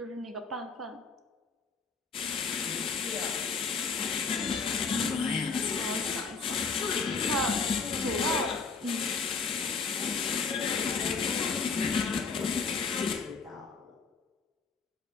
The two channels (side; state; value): right; quieter; 4.8 dB